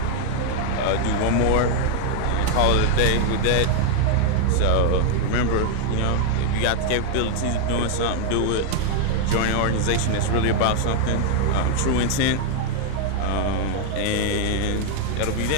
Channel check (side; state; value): both; different; correlation 0.00